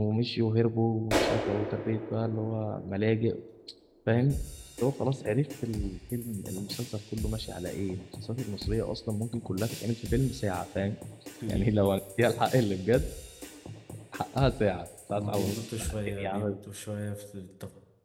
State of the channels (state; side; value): identical; both; correlation 1.00